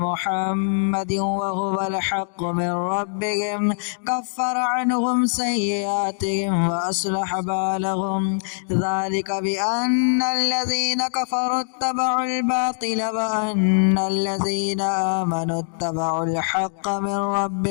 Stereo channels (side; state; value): right; silent; digital silence